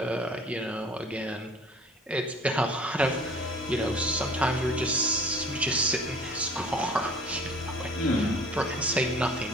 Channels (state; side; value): normal; both; correlation 0.48